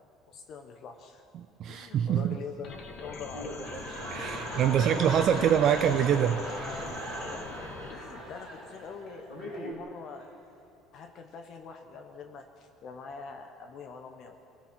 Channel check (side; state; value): left; quieter; 6.6 dB